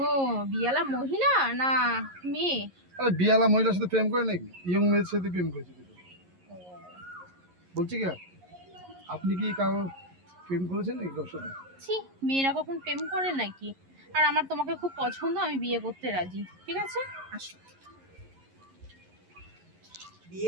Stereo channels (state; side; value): late; left; 11 ms